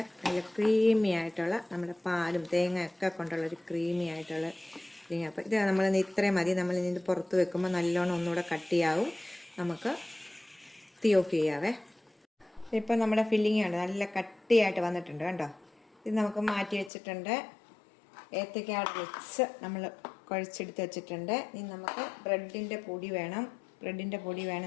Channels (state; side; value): drops out; right; at 16.9 s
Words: നല്ല ക്രീമി ആയിട്ടുള്ള നമ്മുടെ പാലും തേങ്ങയൊക്കെ കൊണ്ടുള്ള ഒരു ക്രീമി ആയിട്ടുള്ള ഫില്ലിങ്. അപ്പോൾ ഇത് നമ്മൾ ഇത്രയും മതി. നമ്മൾ ഇത് പുറത്ത് വെക്കുമ്പോൾ നല്ലോണം ഒന്നുകൂടെ കട്ടിയാവും. നമുക്ക് തീ ഓഫ് ചെയ്യാവേ. ഇപ്പോൾ നമ്മുടെ ഫില്ലിംഗ് ആണ് നല്ല കട്ടിയായിട്ട് വന്നിട്ടുണ്ട് കണ്ടോ. ഇത് നമുക്ക് മാറ്റി വെച്ചിട്ടുണ്ട്. ഏത്തയ്ക്ക വെച്ച് നമ്മൾ കുഴച്ചെടുത്ത് വെച്ചിട്ടുണ്ട്. ഇനി നമുക്ക് ബ്രെഡിൻ്റെ പൊടി വേണം.